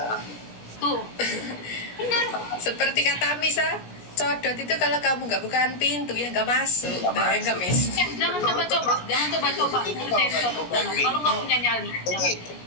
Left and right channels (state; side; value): late; right; 17 ms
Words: Tuh, benar. Seperti kata Misa, codot itu kalau kamu nggak bukaan pintu ya nggak masuk. Nggak Miss. Jangan coba-coba ngerjain codok. Kalau nggak punya nyali, jangan.